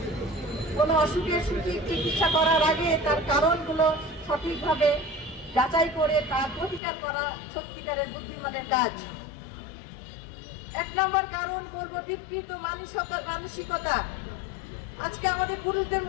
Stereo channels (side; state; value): right; drops out; at 6.8 s